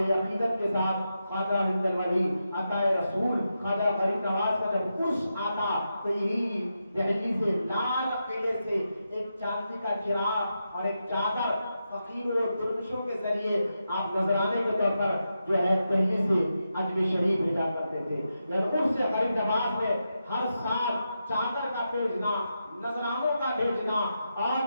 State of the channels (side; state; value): both; inverted; correlation -0.87